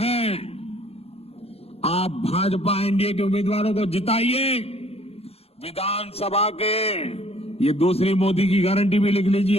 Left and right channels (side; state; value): right; late; 0.29 ms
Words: आप भाजपा एनडीए के उम्मीदवारों को जिताइए। विधानसभा के, ये दूसरी मोदी की गारंटी भी लिख